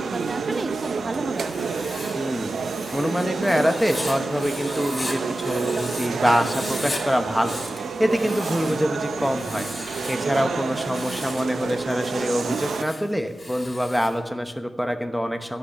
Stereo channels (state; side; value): normal; both; correlation 0.94